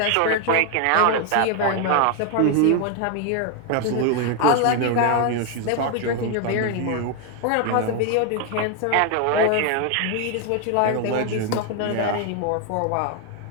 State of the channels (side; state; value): both; different; correlation 0.00